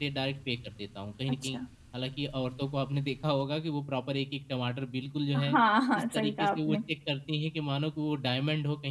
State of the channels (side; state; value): both; identical; correlation 1.00